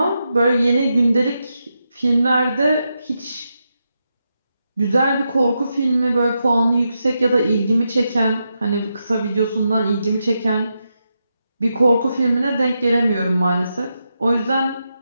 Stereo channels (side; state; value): both; inverted; correlation -0.86